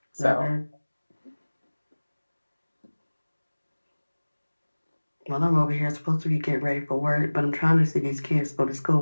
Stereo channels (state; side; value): inverted; both; correlation -1.00